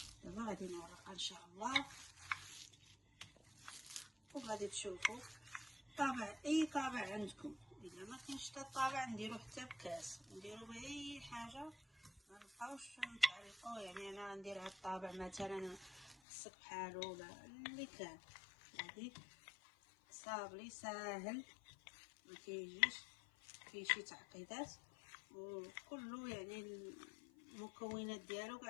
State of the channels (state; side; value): drops out; right; at 16.2 s